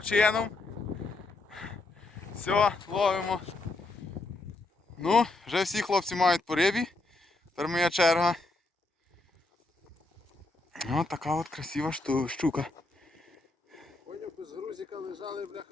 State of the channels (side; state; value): right; quieter; 3.2 dB